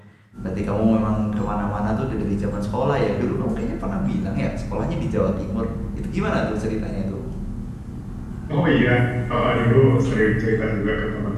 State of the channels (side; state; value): both; identical; correlation 1.00